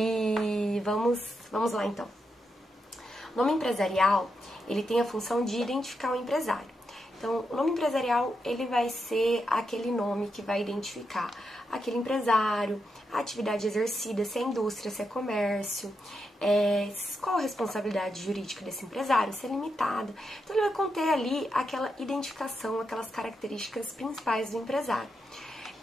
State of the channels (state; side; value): normal; both; correlation 0.84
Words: vamos lá então. O nome empresarial, ele tem a função de identificar o empresário. Então, o nome empresarial, ele vai ser aquele nome que vai identificar aquele empresário, a atividade exercida, se é indústria, se é comércio, qual a responsabilidade jurídica desse empresário, se é limitada. Então, ele vai conter ali aquela identificação, aquelas características principais do empresário.